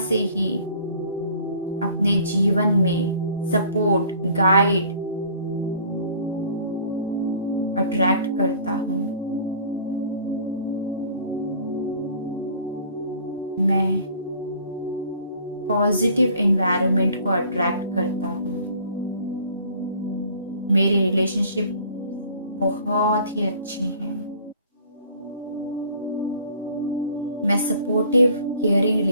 ही अपने जीवन में सपोर्ट, गाइड अट्रैक्ट करता हूँ, मैं पॉजिटिव एनवायरनमेंट को अट्रैक्ट करता हूँ, मेरे रिलेशनशिप बहुत ही अच्छे हैं, मैं सपोर्टिव केयरिंग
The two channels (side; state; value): both; inverted; correlation -0.52